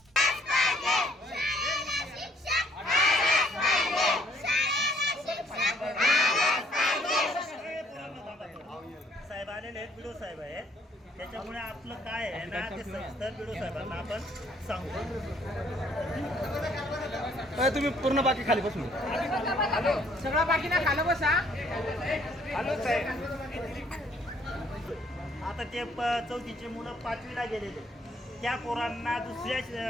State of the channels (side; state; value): both; normal; correlation 0.64